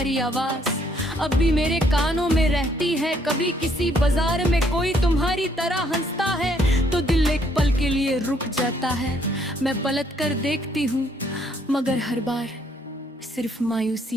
आवाज अब भी मेरे कानों में रहती है। कभी किसी बाजार में कोई तुम्हारी तरह हंसता है तो दिल एक पल के लिए रुक जाता है। मैं पलट कर देखती हूँ मगर हर बार सिर्फ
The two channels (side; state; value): both; normal; correlation 0.68